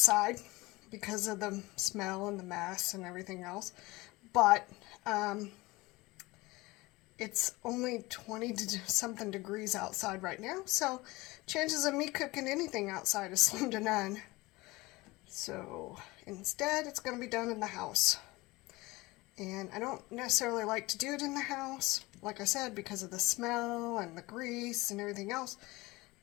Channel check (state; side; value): quieter; right; 21.5 dB